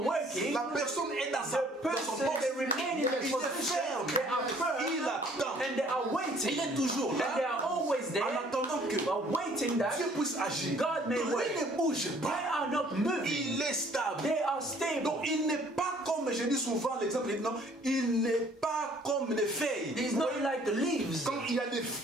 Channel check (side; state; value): both; normal; correlation 0.58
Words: working, la personne est dans son the person, poste. they remain in Il their est position, ferme. they are firm, Il attend. and they are waiting, Il est toujours and they là are always there, en attendant que but waiting that Dieu puisse agir. God may Donc, work. il ne bouge they pas. are not moving, Il est stable. they are stable. Donc il n'est pas comme, je dis souvent l'exemple, non, il n'est pas comme les feuilles. It's not like the leaves, Quand il y a les